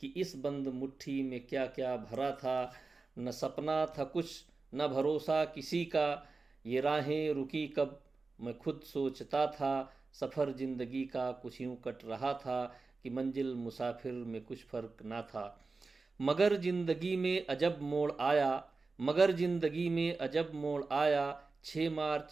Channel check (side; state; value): left; quieter; 3.9 dB